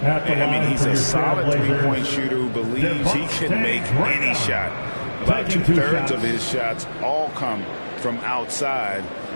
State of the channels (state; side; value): inverted; both; correlation -1.00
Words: I mean, he's a solid three-point shooter who believes he can make any shot. About 2/3 of his shots all come from outside,